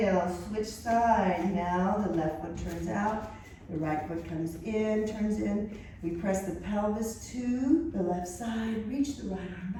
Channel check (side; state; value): both; identical; correlation 1.00